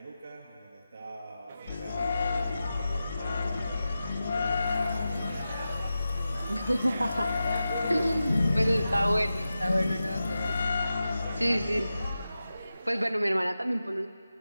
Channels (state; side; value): inverted; both; correlation -0.92